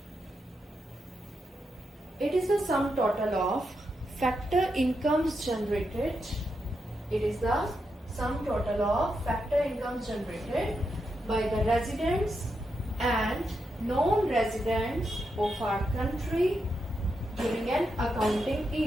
It is the sum total of factor incomes generated. It is the sum total of factor incomes generated by the residents and non-residents of our country during an accounting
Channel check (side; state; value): both; normal; correlation 0.84